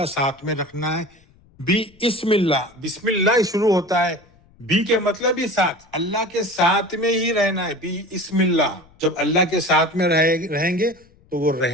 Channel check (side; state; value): left; noise; rumble, 30 dB below the sound